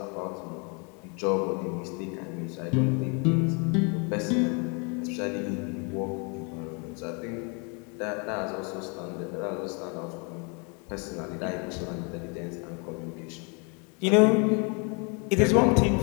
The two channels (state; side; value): quieter; right; 34.3 dB